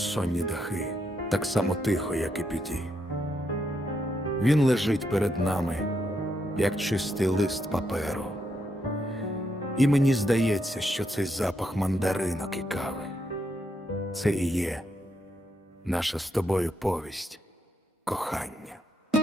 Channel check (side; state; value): both; normal; correlation 0.79